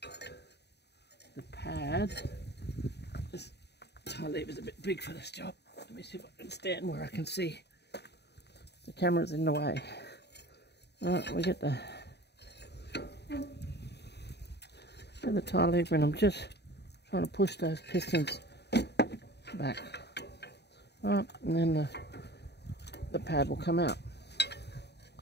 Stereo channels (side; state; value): right; late; 0.49 ms